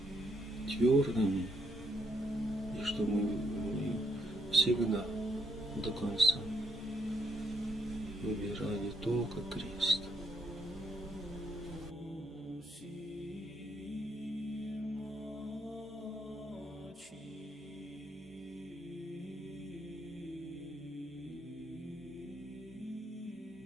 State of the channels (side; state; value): both; normal; correlation 0.73